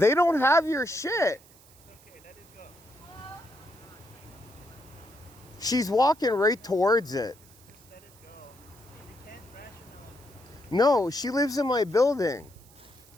don't have your shit. Okay, let it go. Hello? She's walking right towards it. Just let it go. You can't rationalize. No, she lives in my building.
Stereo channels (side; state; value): right; noise; hiss, 26 dB below the sound